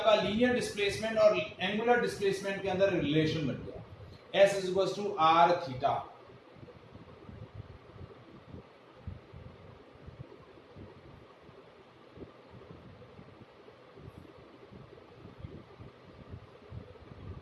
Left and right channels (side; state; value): both; identical; correlation 1.00